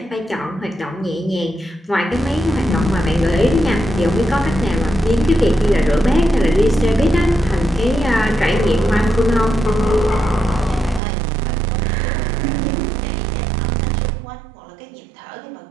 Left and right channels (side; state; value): left; drops out; at 11.0 s